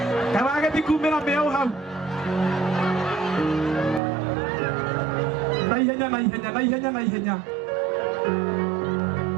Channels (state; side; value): drops out; left; at 4.0 s